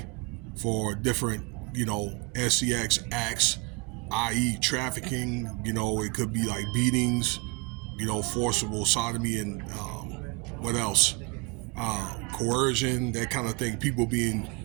for different SCX acts, i.e. trafficking. It could be like beatings, forcible sodomy, and what else? Coercion, that kind of thing. People being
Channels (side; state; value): left; quieter; 28.1 dB